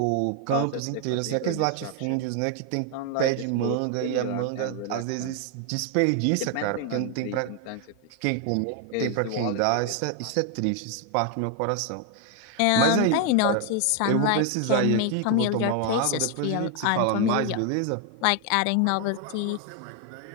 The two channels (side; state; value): both; different; correlation 0.01